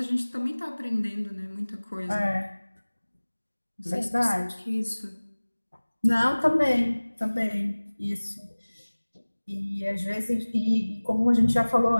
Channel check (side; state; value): both; inverted; correlation -1.00